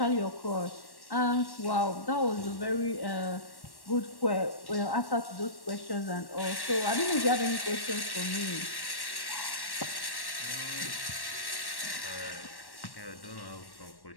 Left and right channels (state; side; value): late; right; 1.1 ms